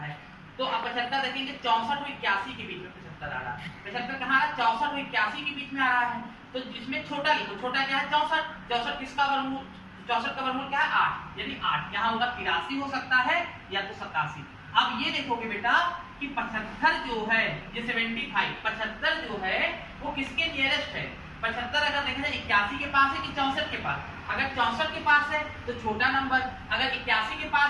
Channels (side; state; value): both; identical; correlation 1.00